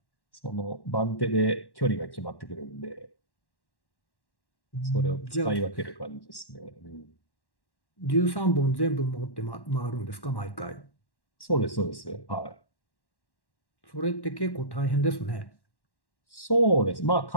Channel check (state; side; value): late; right; 1.1 ms